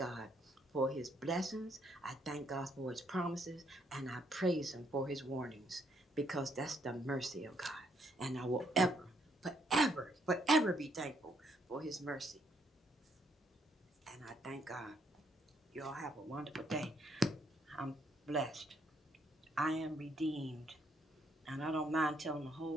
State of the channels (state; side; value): normal; both; correlation 0.71